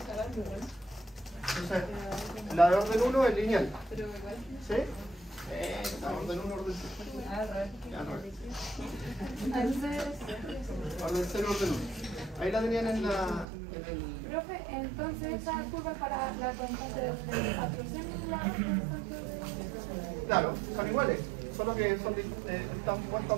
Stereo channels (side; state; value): left; drops out; at 13.5 s